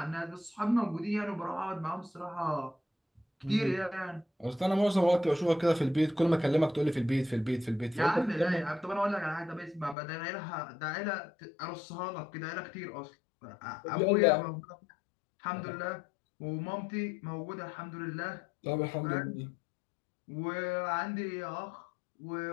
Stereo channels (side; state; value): right; drops out; at 10.0 s